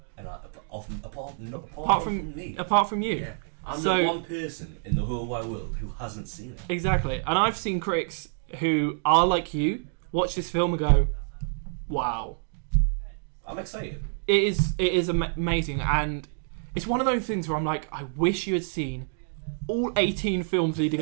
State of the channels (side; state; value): left; silent; digital silence